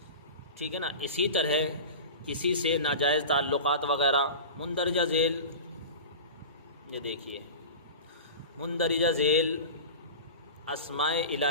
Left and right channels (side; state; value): both; inverted; correlation -0.31